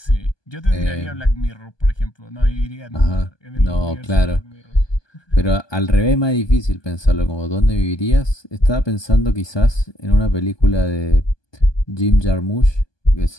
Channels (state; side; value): late; right; 1.2 ms